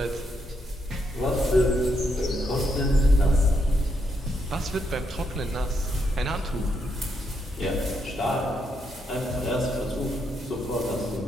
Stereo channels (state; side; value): normal; both; correlation 0.78